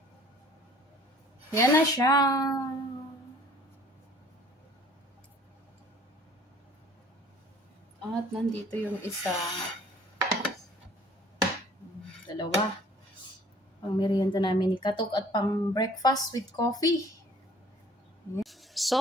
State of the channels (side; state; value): both; normal; correlation 0.54